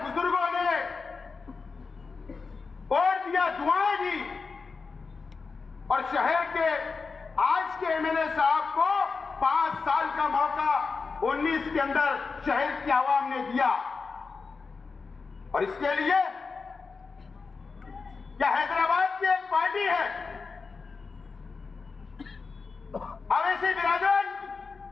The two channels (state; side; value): quieter; right; 4.6 dB